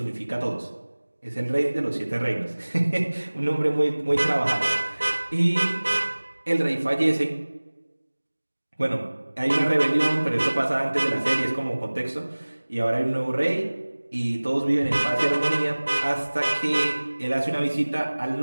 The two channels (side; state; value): both; inverted; correlation -1.00